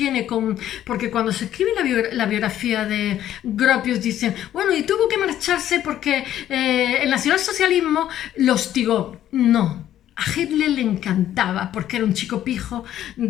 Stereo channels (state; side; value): quieter; right; 11.8 dB